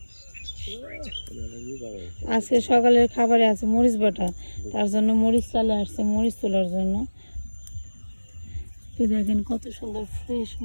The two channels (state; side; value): inverted; both; correlation -1.00